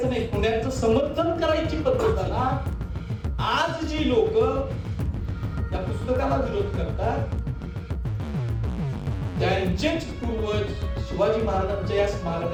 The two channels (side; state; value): both; identical; correlation 1.00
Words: नाही, खुन्याचं समर्थन करायची पद्धत आहे ना. आज जी लोक या पुस्तकाला विरोध करतात त्यांचेच पूर्वज शिवाजी महाराजांच्या या